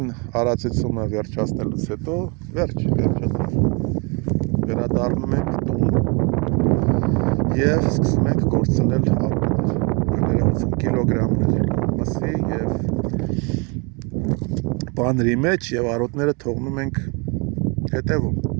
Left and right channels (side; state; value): left; quieter; 31.1 dB